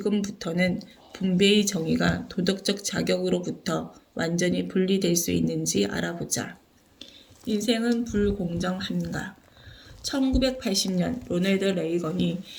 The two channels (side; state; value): both; identical; correlation 1.00